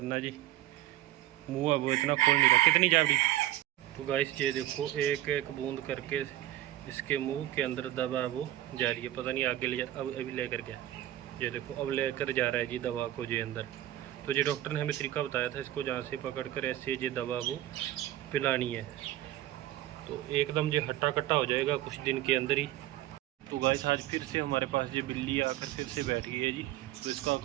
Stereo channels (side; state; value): left; quieter; 14.3 dB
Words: जी मुँह है वो इतना खोल नहीं रहा। कितनी जावड़ी। तो गाइस ये देखो एक एक बूंद करके इसके मुंह के अंदर दवा वो जा रही है। पता नहीं आगे ले जा, अब अभी लेकर गया। ये देखो अब लेकर जा रहा है जी दवा को जी अंदर। तो ये डॉक्टर ने हमें तरीका बताया था, इसको जहाँ से पकड़ कर ऐसे ये दवा वो पिलानी है। तो एकदम ये हट्टा कट्टा हो जाएगा कुछ दिन के अंदर ही। तो गाइस आज फिर से हमारे पास ये बिल्ली आकर फिर से बैठ गई है जी। तो इसका